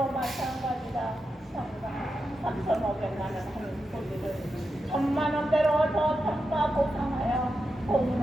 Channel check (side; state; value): both; normal; correlation 0.88